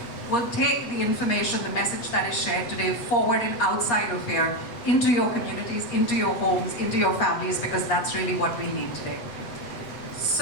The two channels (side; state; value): right; late; 8.0 ms